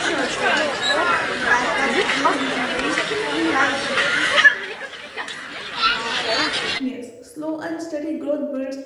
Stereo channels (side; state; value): both; identical; correlation 1.00